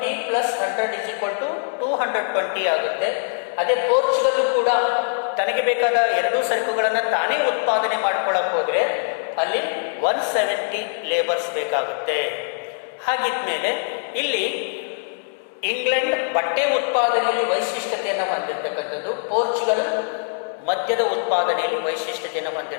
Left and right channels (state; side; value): silent; right; 64 dB below the other